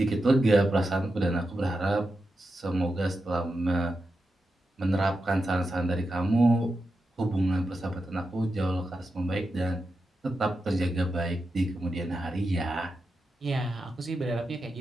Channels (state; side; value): normal; both; correlation 0.88